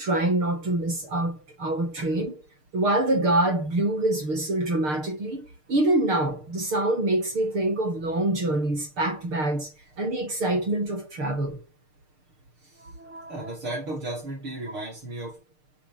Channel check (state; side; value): late; left; 6.6 ms